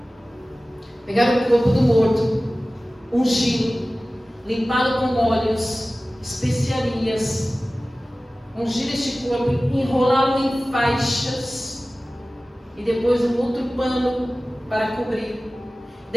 pegar o corpo do morto, ungí-lo, limpá-lo com óleos, especiarias, ungir este corpo, enrolá-lo em faixas e depois um outro pano para cobrir.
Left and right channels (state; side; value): normal; both; correlation 0.97